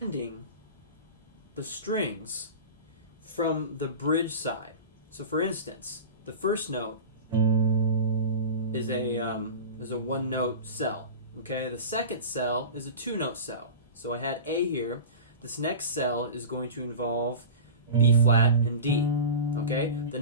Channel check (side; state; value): both; inverted; correlation -0.31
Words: Ending the strings from the bridge side. So for instance, the first note is a one-note cell. Okay, the second cell is a two-note cell. So I had A here. This next cell is going to involve B flat and D. Okay, the